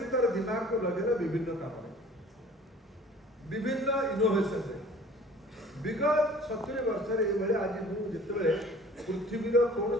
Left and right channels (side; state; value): both; normal; correlation 0.48